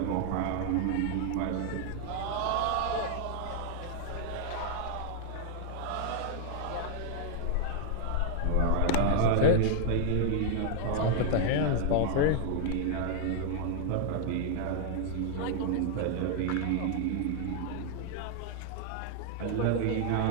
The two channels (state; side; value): different; both; correlation 0.00